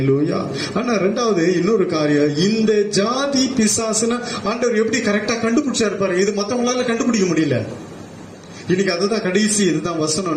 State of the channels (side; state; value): both; identical; correlation 1.00